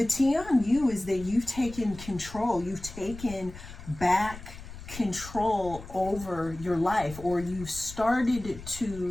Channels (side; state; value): left; noise; rumble, 14 dB below the sound